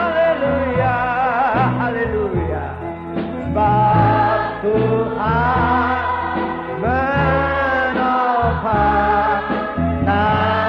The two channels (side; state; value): both; identical; correlation 1.00